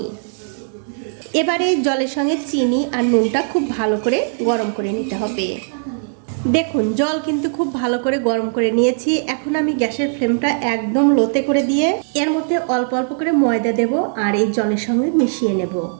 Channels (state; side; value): silent; left; digital silence